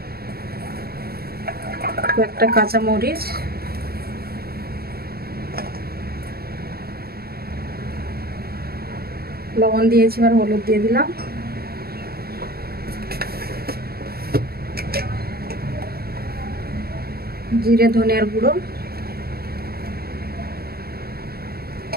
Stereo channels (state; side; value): late; left; 0.45 ms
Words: একটা কাঁচা মরিচ, লবণ দিয়েছি, আর হলুদ দিয়ে দিলাম। জিরে ধনিয়ার গুঁড়ো,